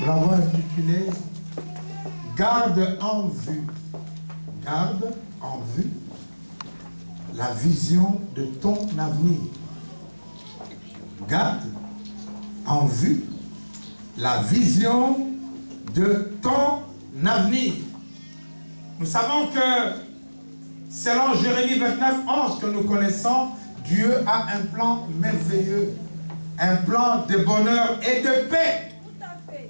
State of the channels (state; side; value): inverted; both; correlation -1.00